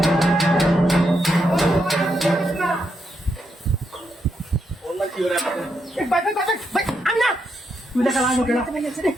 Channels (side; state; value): both; normal; correlation 0.81